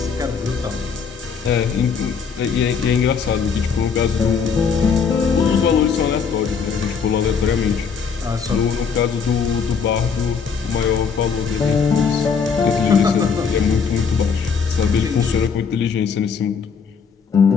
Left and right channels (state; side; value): quieter; right; 6.0 dB